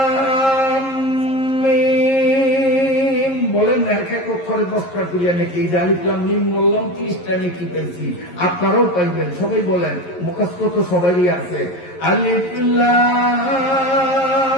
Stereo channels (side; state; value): right; late; 11 ms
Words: মিম। বলেন না এক এক অক্ষরে 10টা করিয়া নাকি? এই আলিফ লাম মিম বললাম, 30টা নাকি পেয়েছি। আপনারাও পাইবেন, সবাই বলেন, মুখস্থ তো সবারই আছে। আলিফ